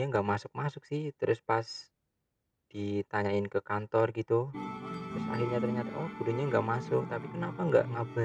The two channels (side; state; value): both; identical; correlation 1.00